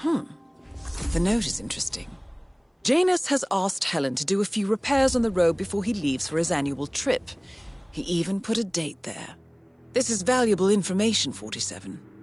The note is interesting. Janus has asked Helen to do a few repairs on the robe before he leaves for his annual trip. He even put a date there. This is valuable information, 47.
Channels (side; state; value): both; identical; correlation 1.00